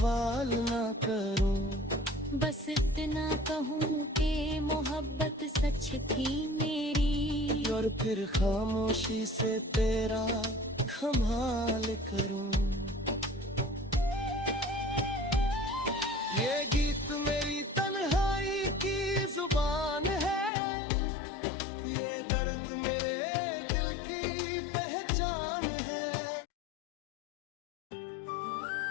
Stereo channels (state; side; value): drops out; right; at 20.5 s